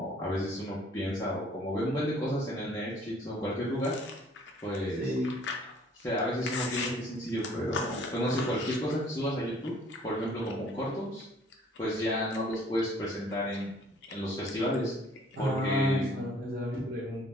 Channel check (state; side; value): normal; both; correlation 0.57